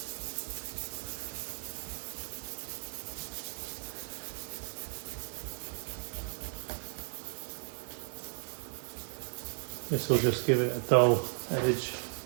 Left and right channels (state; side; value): silent; left; 54 dB below the other